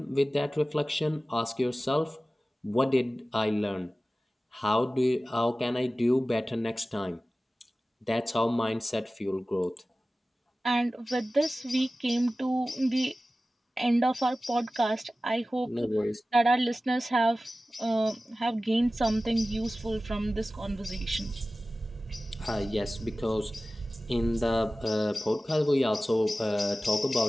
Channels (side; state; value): both; normal; correlation 0.96